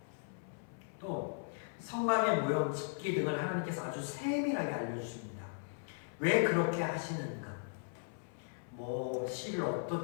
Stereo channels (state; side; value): silent; right; 53 dB below the other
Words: 또 성막의 모형, 집기 등을 하나님께서 아주 세밀하게 알려주십니다. 왜 그렇게 하시는가? 실을